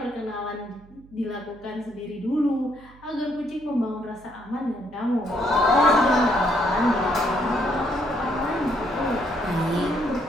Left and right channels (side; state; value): right; noise; hum, 25 dB below the sound